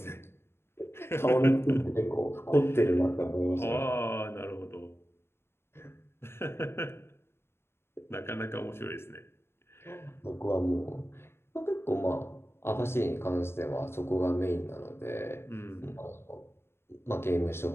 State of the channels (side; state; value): right; late; 0.12 ms